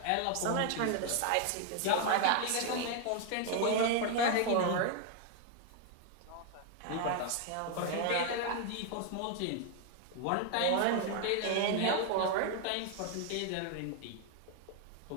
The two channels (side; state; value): both; different; correlation 0.01